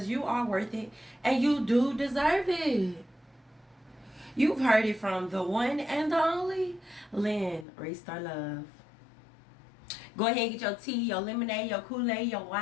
you are worth it and you do deserve it. You've heard it from the one and the only Lynn Restart Love. Go ahead and get your tea, your lemonade, your Kool-Aid, your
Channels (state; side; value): drops out; right; at 7.7 s